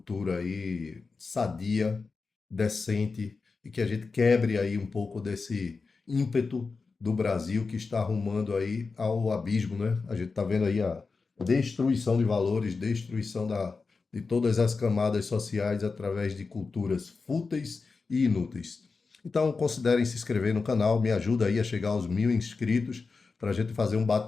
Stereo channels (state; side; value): quieter; right; 4.4 dB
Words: aí sadia, decente e que a gente quebre aí um pouco desse ímpeto do Brasil que está arrumando aí ao abismo, né? A gente está vendo aí a destruição de valores, destruição de todas as camadas sociais através de culturas fúteis e inúteis. Então, considerem se inscrever no canal, me ajuda aí a chegar aos 1.000 inscritos para a gente fazer um